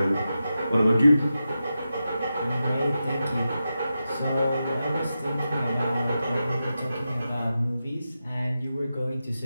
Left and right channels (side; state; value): both; inverted; correlation -0.91